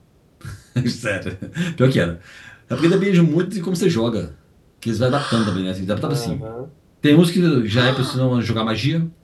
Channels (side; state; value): both; identical; correlation 1.00